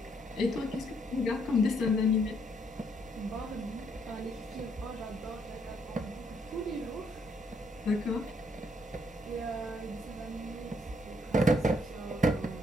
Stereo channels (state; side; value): normal; both; correlation 0.71